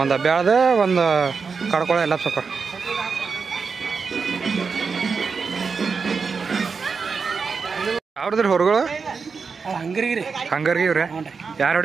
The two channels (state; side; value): quieter; left; 5.2 dB